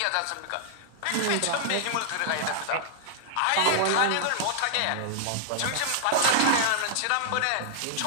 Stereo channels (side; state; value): both; different; correlation -0.01